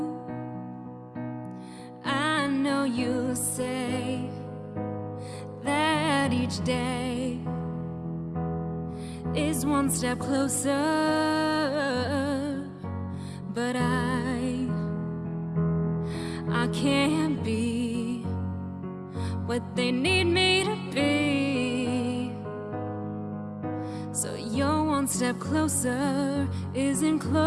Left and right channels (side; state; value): both; identical; correlation 1.00